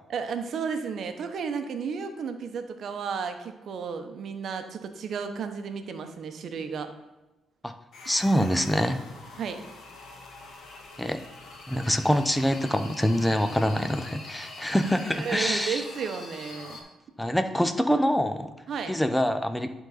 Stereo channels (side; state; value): both; normal; correlation 0.90